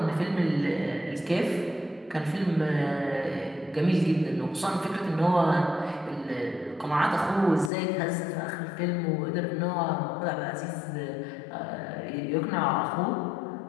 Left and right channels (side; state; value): right; drops out; at 7.7 s